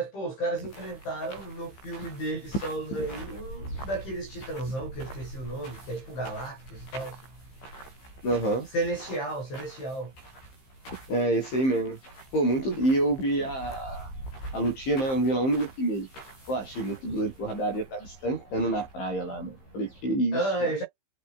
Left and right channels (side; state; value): right; late; 15 ms